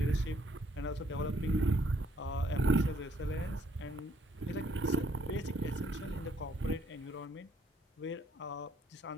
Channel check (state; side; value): normal; both; correlation 0.67